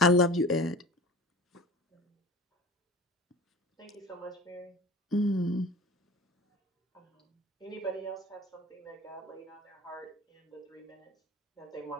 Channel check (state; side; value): normal; both; correlation 0.37